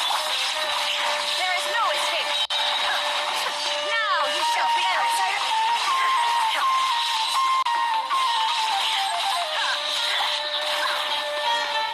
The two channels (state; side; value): identical; both; correlation 1.00